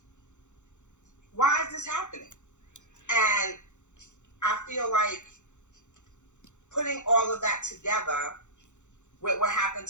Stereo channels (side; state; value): right; late; 0.84 ms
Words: Why is this happening? And I feel like putting all of that together with what happened